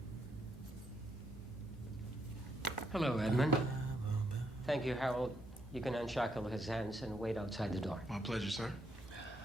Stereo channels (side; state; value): both; normal; correlation 0.76